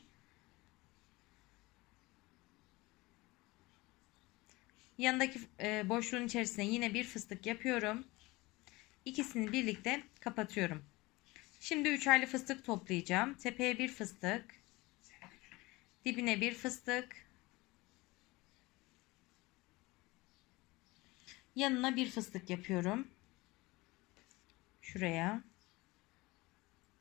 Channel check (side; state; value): right; quieter; 21.9 dB